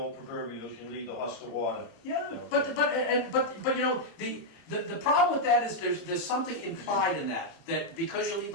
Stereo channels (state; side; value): late; right; 30 ms